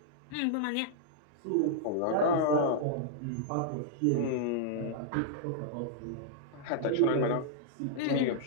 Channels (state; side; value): different; both; correlation -0.02